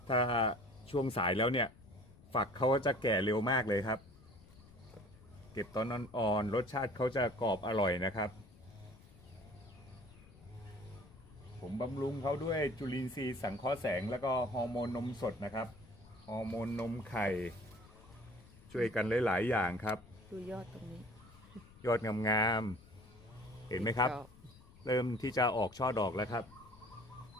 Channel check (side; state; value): left; noise; rumble, 23 dB below the sound